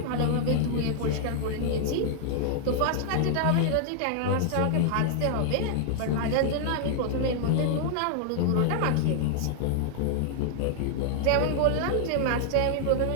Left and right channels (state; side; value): different; both; correlation -0.01